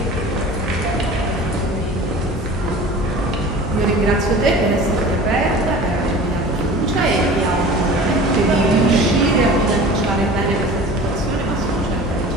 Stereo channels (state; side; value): normal; both; correlation 0.40